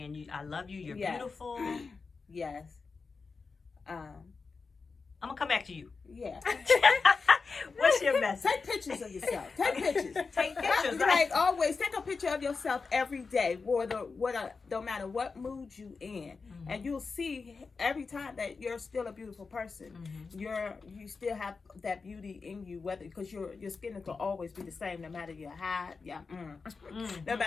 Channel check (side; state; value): right; quieter; 4.6 dB